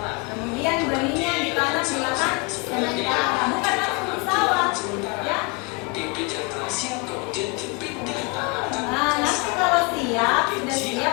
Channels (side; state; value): right; quieter; 29.6 dB